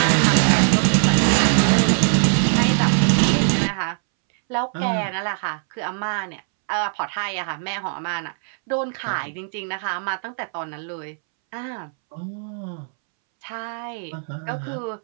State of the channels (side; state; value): left; silent; 64 dB below the other